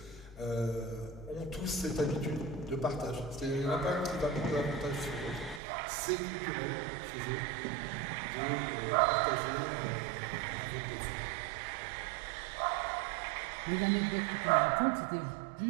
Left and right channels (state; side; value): drops out; left; at 5.6 s